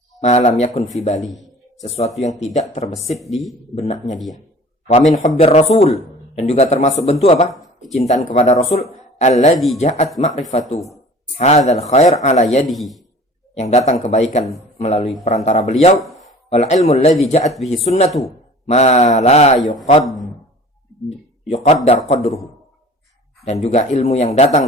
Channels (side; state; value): both; normal; correlation 0.45